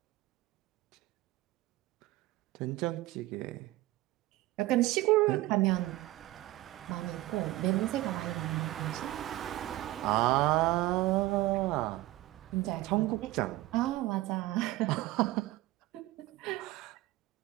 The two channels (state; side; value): quieter; left; 17.5 dB